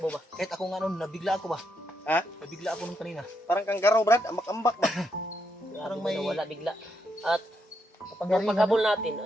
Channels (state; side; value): normal; both; correlation 0.80